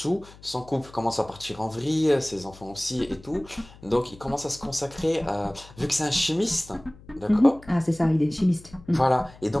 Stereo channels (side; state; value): left; noise; hum, 22 dB below the sound